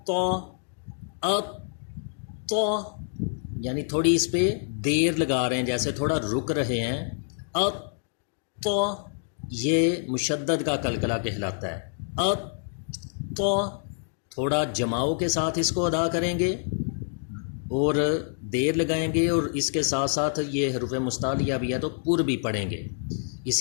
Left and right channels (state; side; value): silent; right; digital silence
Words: طا، ات طا، یعنی تھوڑی اس پہ دیر لگا رہے ہیں، جیسے تھوڑا رک رہے ہیں۔ ات طا یہ مشدد کا قلقلہ کہلاتا ہے۔ ات طا تھوڑا جماؤ کے ساتھ اس کو ادا کریں گے اور دیر لگائیں گے، اور اس کے ساتھ ساتھ یہ حروف مستعلیہ بھی ہے تو پر بھی پڑھیں گے۔